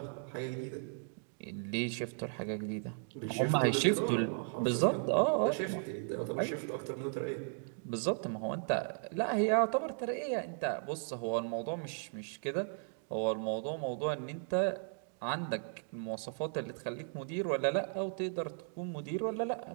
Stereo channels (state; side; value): silent; left; 54 dB below the other